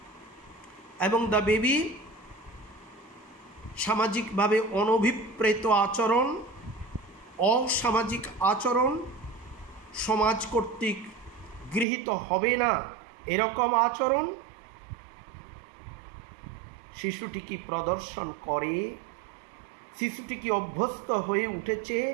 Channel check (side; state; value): left; drops out; at 11.9 s